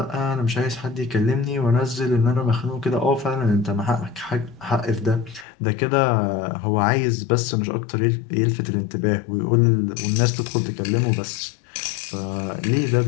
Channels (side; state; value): right; drops out; at 5.5 s